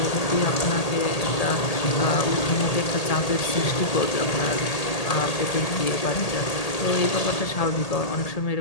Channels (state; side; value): late; right; 1.8 ms